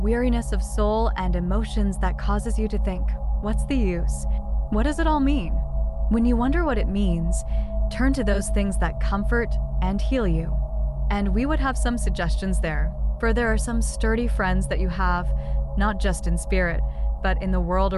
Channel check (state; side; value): identical; both; correlation 1.00